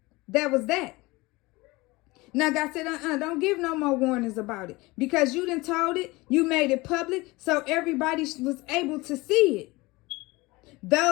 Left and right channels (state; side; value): quieter; right; 22.3 dB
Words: That was that. Now God said, don't give no more warnings about it. Because you done told it, you made it public, so everybody was able to see it.